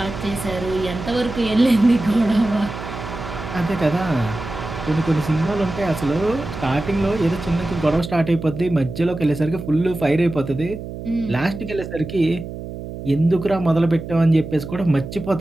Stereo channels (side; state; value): right; noise; hum, 10 dB below the sound